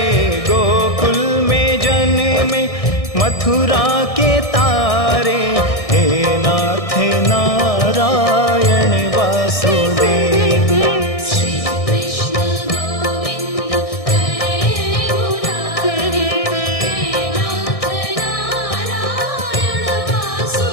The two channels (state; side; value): late; right; 1.6 ms